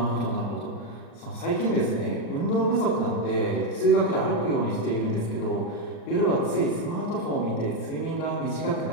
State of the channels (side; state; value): right; late; 39 ms